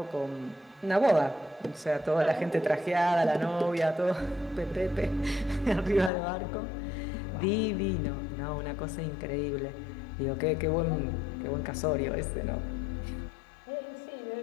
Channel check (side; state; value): right; drops out; at 6.1 s